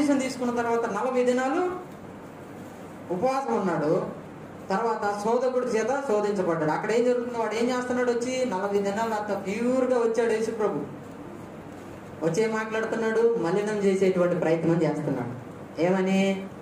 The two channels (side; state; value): both; identical; correlation 1.00